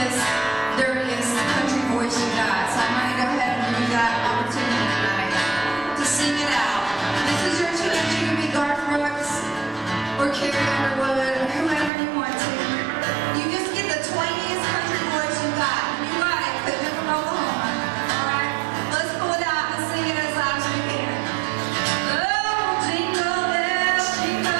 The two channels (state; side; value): drops out; left; at 11.9 s